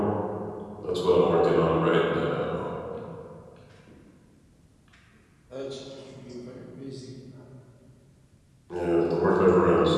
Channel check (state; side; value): identical; both; correlation 1.00